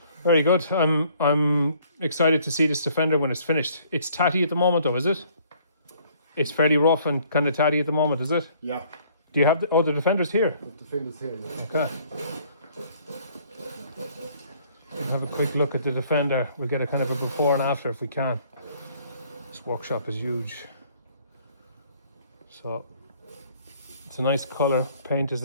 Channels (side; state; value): both; inverted; correlation -0.60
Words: Very good. I'm excited to see this Defender when it's finished. It's tatty at the moment, though, is it? It's fairly rough and kind of tatty at the moment, is it? Yeah. Do you have the Defender's here? The Defender's here. Yeah. Okay. We'll have a quick look at the Defender. We'll get a kind of a before and after if we can. This workshop is huge. So it's a nice colour. Paint is